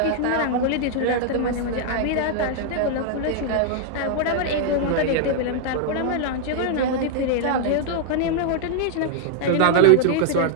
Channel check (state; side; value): different; both; correlation -0.01